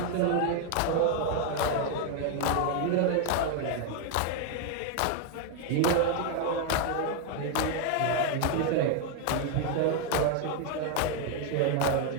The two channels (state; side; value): different; both; correlation 0.01